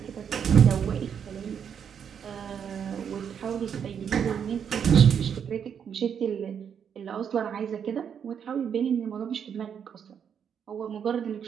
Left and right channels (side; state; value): left; quieter; 7.8 dB